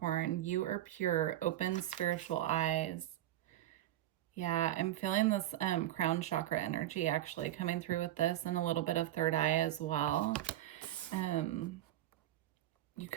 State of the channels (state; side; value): quieter; left; 13.6 dB